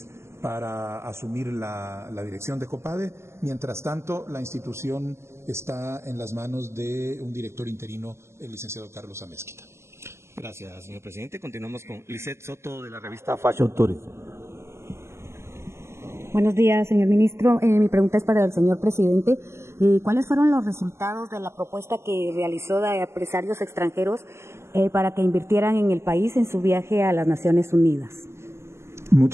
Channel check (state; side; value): late; left; 0.13 ms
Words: para asumir la dirección de COPADE. Mientras tanto, la institución está en las manos de un director interino, el licenciado Carlos Amezquita. Gracias, señor presidente. Continuamos con Lisette Soto, de la revista Fashion Tourism. Buenos días, señor ministro. Mi pregunta es para el señor presidente. ¿Cuáles fueron los resultados de la propuesta que realizó de empresarios extranjeros para que invirtieran en el país en su viaje a las Naciones Unidas?